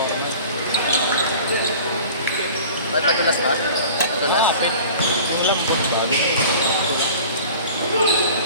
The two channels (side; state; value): both; inverted; correlation -0.43